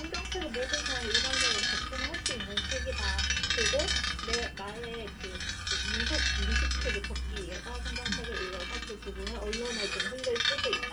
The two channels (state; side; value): identical; both; correlation 1.00